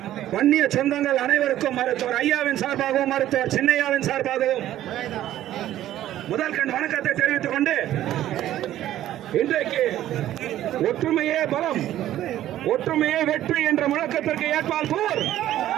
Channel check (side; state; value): left; quieter; 13.0 dB